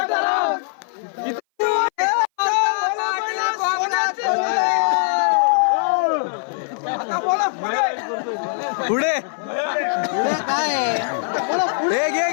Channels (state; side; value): silent; right; 59 dB below the other